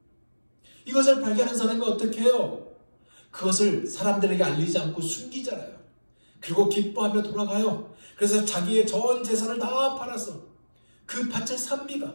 이것을 발견한 사람이 어떻게 해요? 그것을 사람들에게 알리지 않고 숨기잖아요. 그리고 기뻐하며 돌아가요. 그래서 자기의 전 재산을 다 팔아서 그 밭을 삽니다.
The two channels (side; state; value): both; inverted; correlation -1.00